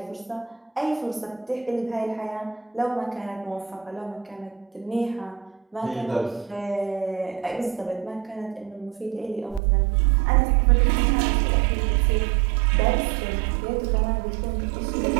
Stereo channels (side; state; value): left; drops out; at 9.6 s